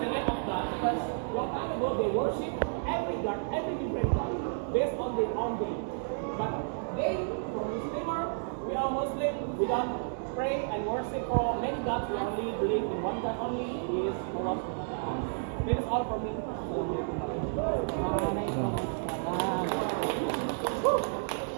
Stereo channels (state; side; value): silent; left; digital silence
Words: the name of God because long time ago they worship every God, every different God based on their own day. But they, for Muslimer, we are Muslim, we don't pray and worship for many gods, we only believe in one God only, is Allah. That is all from me.